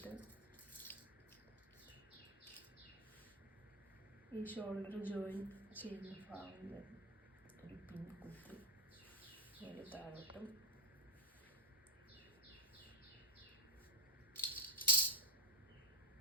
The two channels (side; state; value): both; normal; correlation 0.06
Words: ഈ ഷോൾഡർ ജോയിൻ ചെയ്യുന്ന ഭാഗം ഒരു പിൻ കുത്തി ഒരു താഴോട്ടും